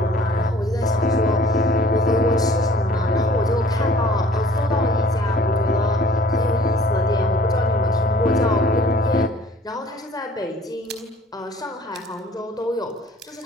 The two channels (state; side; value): normal; both; correlation 0.54